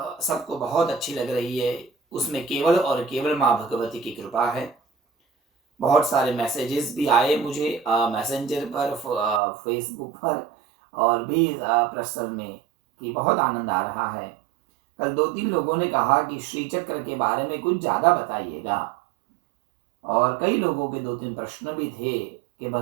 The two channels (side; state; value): left; drops out; at 9.4 s